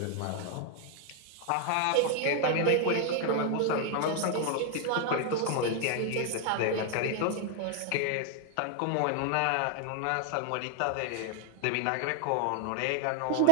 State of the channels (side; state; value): both; different; correlation 0.00